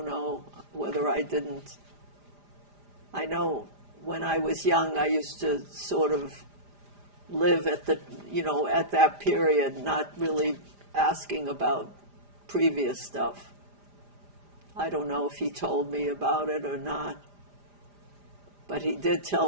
know whether I didn't. I know when I was young, I used to sort of live at at that period, not really asking about previous stuff. I don't know if he told me about it or not, but he did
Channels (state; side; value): late; left; 5.0 ms